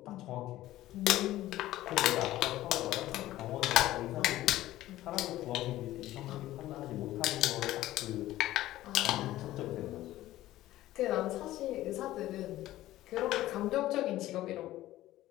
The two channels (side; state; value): right; quieter; 15.2 dB